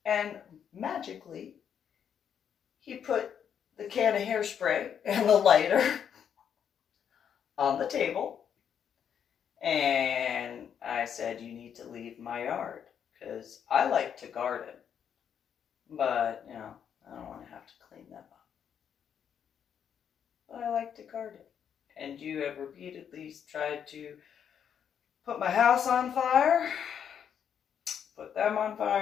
And magically, he put the can of hairspray and the lighter on the table. And I said, you need to leave my yard, because I like to garden. But, I don't want to have to clean them up. But I like to garden. and you have repeatedly tried to put my house on fire, put them on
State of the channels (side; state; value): right; quieter; 8.3 dB